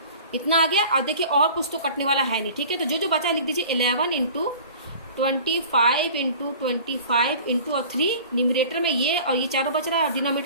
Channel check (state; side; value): inverted; both; correlation -0.44